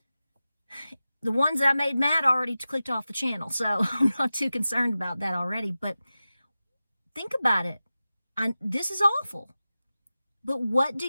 The ones that I made mad already clicked off the channel, so I'm not too concerned about that already. But think about it. This is awful. But what do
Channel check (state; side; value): inverted; both; correlation -0.95